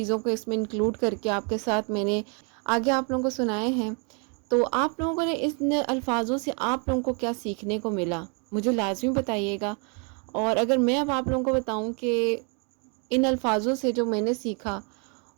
کو اس میں انکلوڈ کر کے آپ کے ساتھ میں نے آگے آپ لوگوں کو سنائے ہیں۔ تو آپ لوگوں نے اس الفاظوں سے آپ لوگوں کو کیا سیکھنے کو ملا، مجھے لازمی بتائیے گا۔ اور اگر میں اب آپ لوگوں کو بتاؤں کہ ان الفاظوں سے جو میں نے سیکھا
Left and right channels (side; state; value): left; quieter; 37.0 dB